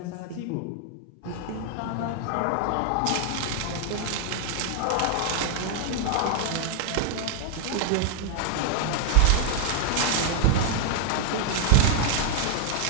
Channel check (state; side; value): different; both; correlation 0.00